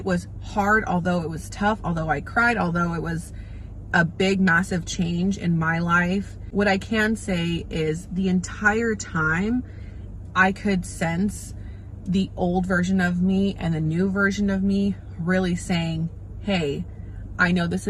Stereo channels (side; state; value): both; identical; correlation 1.00